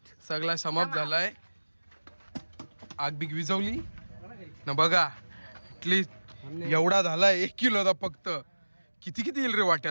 सगळा समाप्त झालाय. आग बिग विझवली ना बघा. ऍटलीस्ट एवढा झालाय 1 किलोचा फक्त. किती किती येईल रे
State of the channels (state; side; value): inverted; both; correlation -1.00